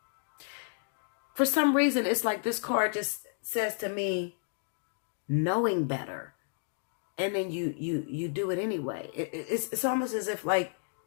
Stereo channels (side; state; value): right; silent; digital silence